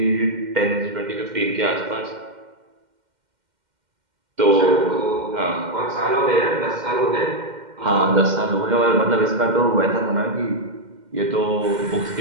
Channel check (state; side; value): late; left; 2.1 ms